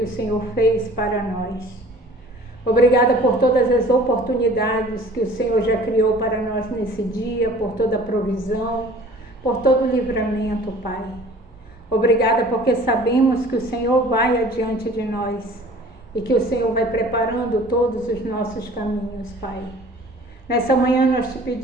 o Senhor fez para nós. Obrigada por todas as oportunidades que o Senhor já criou para nós nesse dia, por toda a provisão, por todo o livramento, Pai. Obrigada porque sabemos que o Senhor vai adiante de nós e que o Senhor vai preparando todos os nossos caminhos, Pai. Nessa manhã nós te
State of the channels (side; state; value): both; normal; correlation 0.48